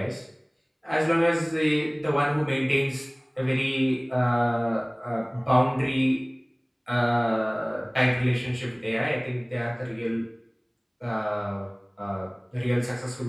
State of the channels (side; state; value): both; identical; correlation 1.00